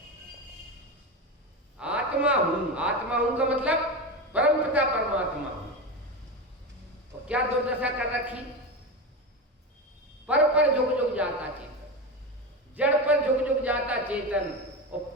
आत्मा हूं, आत्मा हूं का मतलब परम पिता परमात्मा हूं। तो क्या दुर्दशा कर रखी? पर झुक झुक जाता चेतन, जड़ पर झुक झुक जाता चेतन, और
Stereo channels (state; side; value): normal; both; correlation 0.20